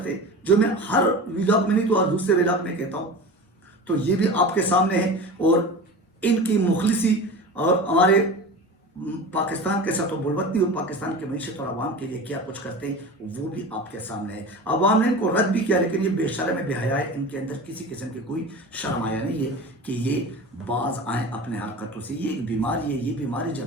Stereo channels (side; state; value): both; normal; correlation 0.32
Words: جو میں ہر ویلاگ میں نہیں تو دوسرے ویلاگ میں کہتا ہوں. تو یہ بھی آپ کے سامنے ہے، اور ان کی مخلصی اور ہمارے پاکستان کے ساتھ بلوتی اور پاکستان کی معیشت اور عوام کے لیے کیا کچھ کرتے ہیں وہ بھی آپ کے سامنے ہے. عوام نے ان کو رد بھی کیا، لیکن یہ بے شرم بے حیا ہے. ان کے اندر کسی قسم کی کوئی شرم آیا نہیں ہے کہ یہ باز آئیں اپنے حرکتوں سے. یہ ایک بیماری ہے، یہ بیماری